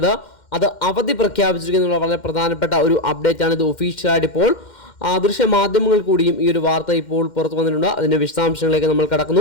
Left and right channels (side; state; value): right; late; 2.1 ms